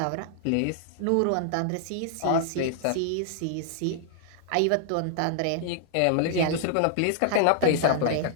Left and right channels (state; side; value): different; both; correlation -0.01